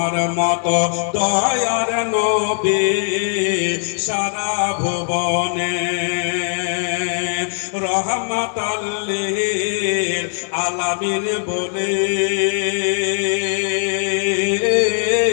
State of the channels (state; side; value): silent; right; digital silence